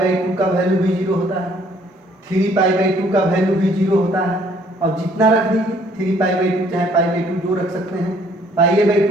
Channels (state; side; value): normal; both; correlation 0.62